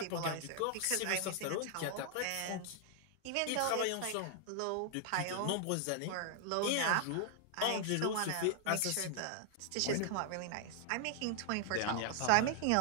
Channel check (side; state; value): both; different; correlation 0.00